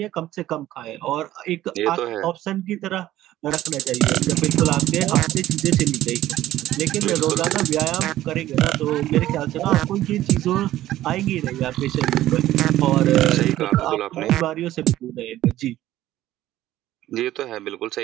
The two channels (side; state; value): left; quieter; 14.3 dB